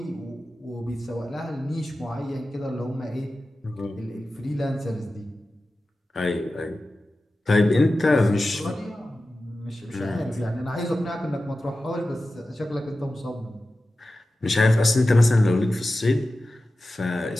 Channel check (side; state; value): both; normal; correlation 0.94